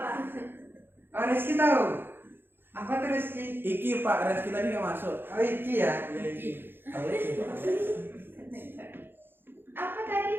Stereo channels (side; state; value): left; late; 0.10 ms